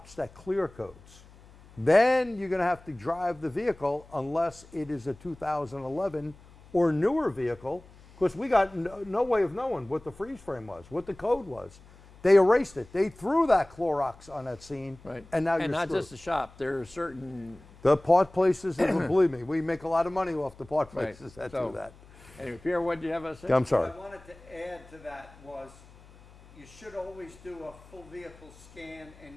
that clear codes, then you're going to have to drive the vehicle unless it is a 2011 or newer vehicle, because we got no way of knowing what the freeze frame was, what the code was. They erased it. They threw that Clorox on that scene, and now you're screwed. And not just the shop. There are certain... The part places, believe me, we make a lot of money off the part places that do that. Anyway, Pierre, what did you have to say? I'm sorry. What I wanted to add to that was you should always do a full vehicle scan, and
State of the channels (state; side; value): noise; left; hum, 23 dB below the sound